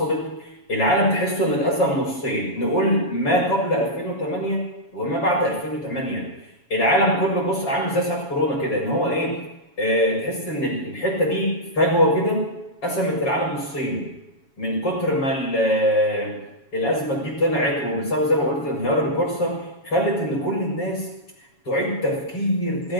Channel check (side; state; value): right; late; 7.2 ms